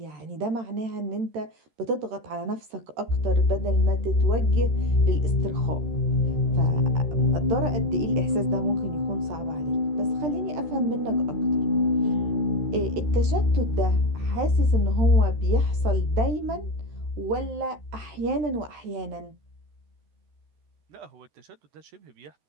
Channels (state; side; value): late; left; 13 ms